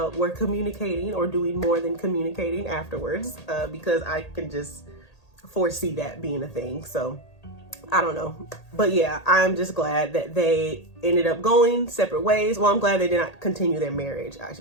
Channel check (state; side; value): late; right; 1.8 ms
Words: were communicating or doing more than communicating afterwards, because I can just foresee that being a thing. So I don't know. But yeah, I'm just glad that they ended up going separate ways. Well, I'm glad they did not continue their marriage, I